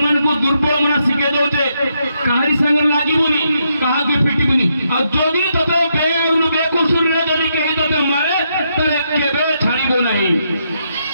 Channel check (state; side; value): inverted; both; correlation -0.79